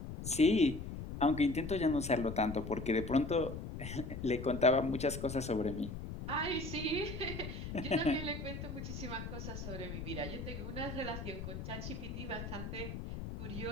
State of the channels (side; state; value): left; noise; rumble, 7 dB below the sound